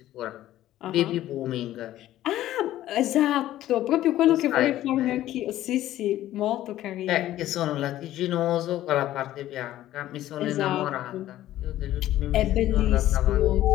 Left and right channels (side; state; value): right; quieter; 13.8 dB